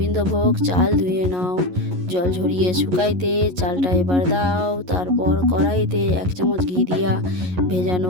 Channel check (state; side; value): late; left; 11 ms